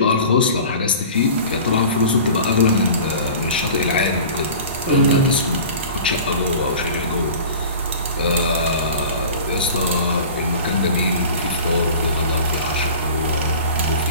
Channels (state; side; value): inverted; both; correlation -0.39